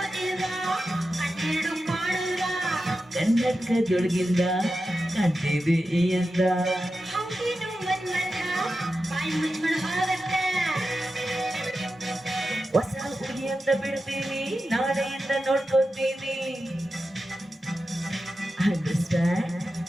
ಕನ್ನಡಕದೊಳಗಿಂದ ಕಾಣ್ತಿದೆ ಈ ಅಂದ. ಹೊಸ ಹುಡುಗಿಯಿಂದ ಬಿಡ್ತೀನಿ, ನಾಳೆಯಿಂದ ನೋಡ್ಕೊತೀನಿ. ಅಂಡರ್ಸ್ಟ್ಯಾಂಡ್?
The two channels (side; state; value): both; normal; correlation 0.91